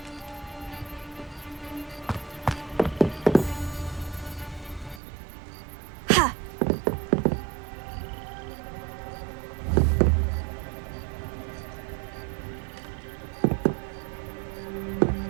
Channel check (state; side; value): drops out; left; at 5.0 s